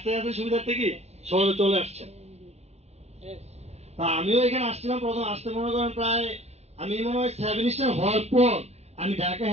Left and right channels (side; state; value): left; late; 0.31 ms